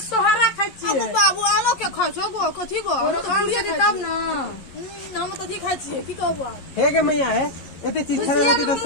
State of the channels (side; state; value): right; late; 11 ms